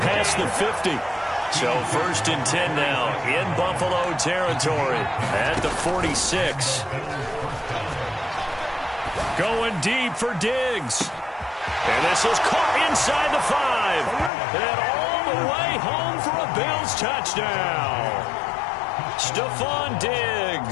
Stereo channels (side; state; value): right; drops out; at 14.3 s